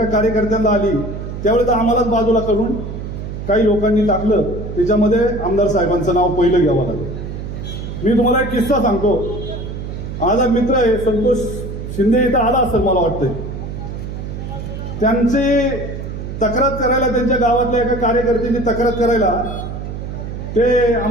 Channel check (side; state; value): right; noise; hum, 7 dB below the sound